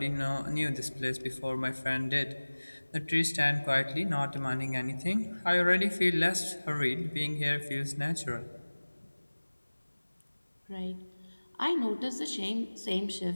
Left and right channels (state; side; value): inverted; both; correlation -1.00